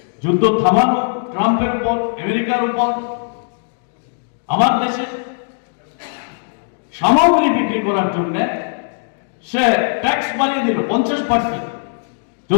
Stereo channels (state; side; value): silent; right; 58 dB below the other